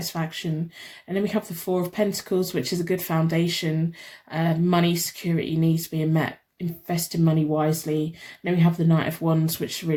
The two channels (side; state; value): both; identical; correlation 1.00